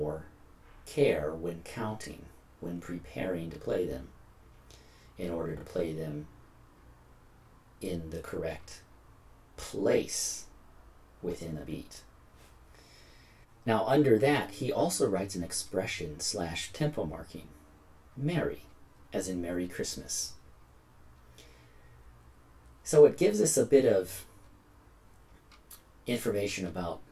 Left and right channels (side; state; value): both; identical; correlation 1.00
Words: care when counting, when preparing to play them, in order to play them in the correct place within a beat. Now, under that, he also writes an expression / tempo marking, merry, as in Merry Christmas. So it gives us a bit of information about